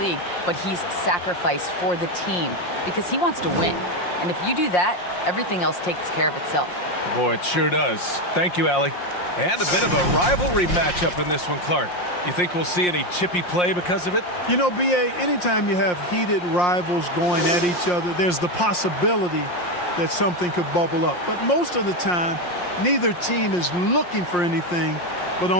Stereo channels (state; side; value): late; right; 5.6 ms